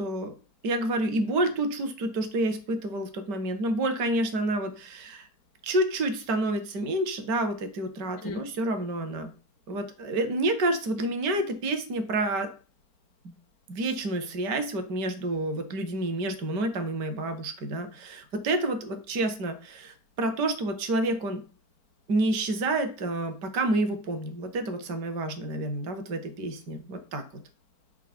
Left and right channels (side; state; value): left; late; 4.4 ms